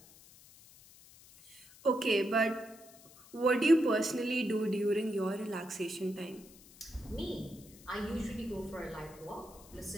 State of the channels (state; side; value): noise; left; hiss, 22 dB below the sound